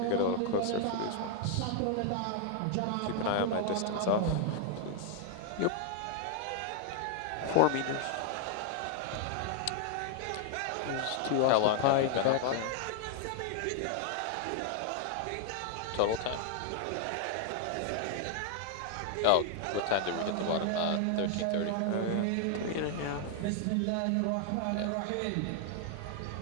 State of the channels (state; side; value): different; both; correlation 0.00